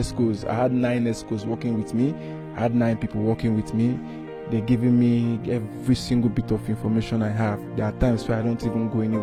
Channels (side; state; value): both; identical; correlation 1.00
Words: I had 9 escorts working with me. I had 9 people working with me. They're giving me every single bit of information I have. There are times where I don't even go